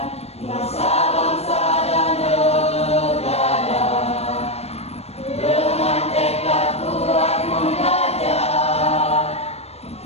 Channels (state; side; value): late; right; 0.30 ms